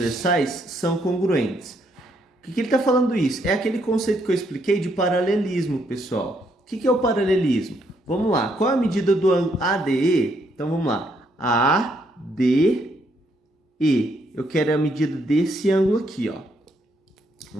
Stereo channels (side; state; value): both; normal; correlation 0.73